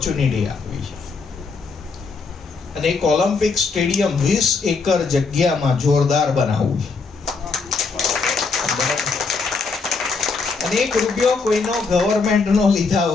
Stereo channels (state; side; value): quieter; right; 4.6 dB